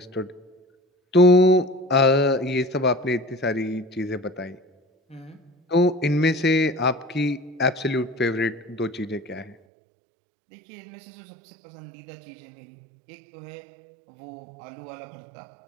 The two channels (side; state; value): left; drops out; at 9.6 s